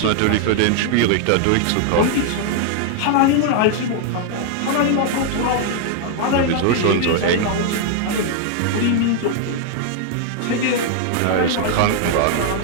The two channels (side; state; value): both; different; correlation -0.01